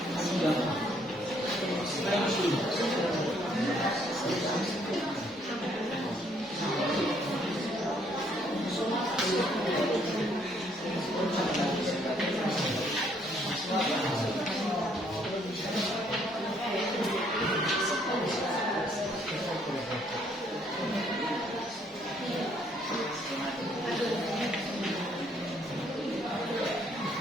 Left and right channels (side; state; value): both; normal; correlation 0.67